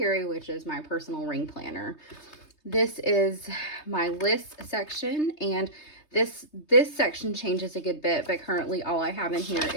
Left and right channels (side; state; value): right; late; 3.2 ms